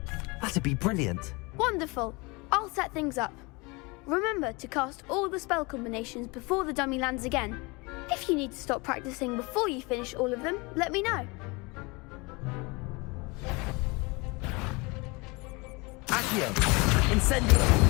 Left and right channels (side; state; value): right; quieter; 26.6 dB